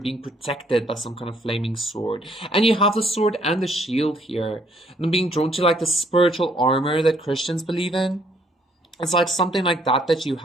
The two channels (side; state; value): both; normal; correlation 0.66